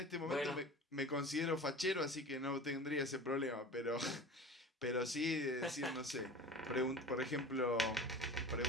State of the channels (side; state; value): both; normal; correlation 0.37